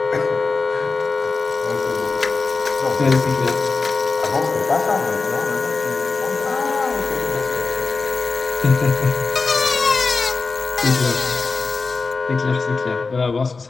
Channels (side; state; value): right; quieter; 4.2 dB